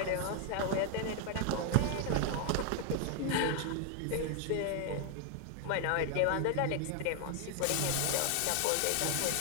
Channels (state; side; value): different; both; correlation 0.00